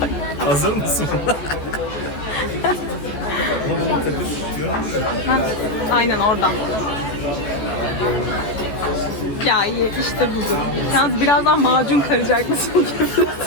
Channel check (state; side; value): late; right; 14 ms